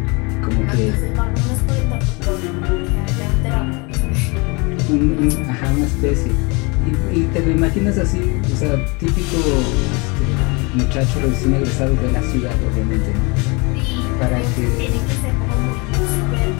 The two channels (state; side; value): quieter; right; 28.6 dB